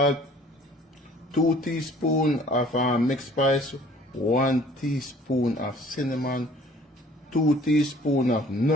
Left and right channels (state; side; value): normal; both; correlation 0.53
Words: 2 teaspoons of mixed spice, 1 teaspoon of cinnamon, 2 teaspoons of